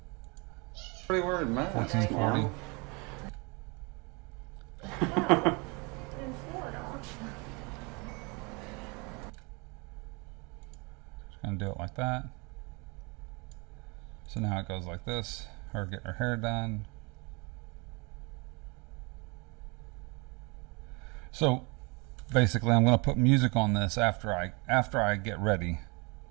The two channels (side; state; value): left; quieter; 29.5 dB